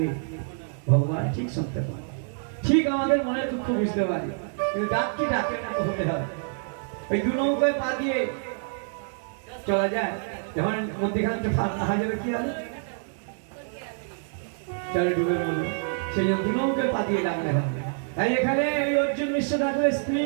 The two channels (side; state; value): left; silent; digital silence